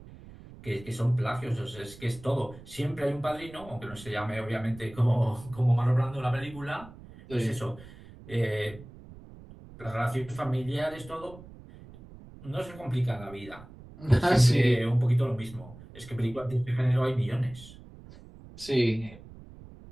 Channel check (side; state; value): right; noise; rumble, 18 dB below the sound